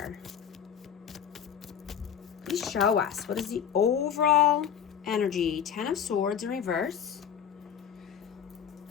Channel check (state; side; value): quieter; right; 8.3 dB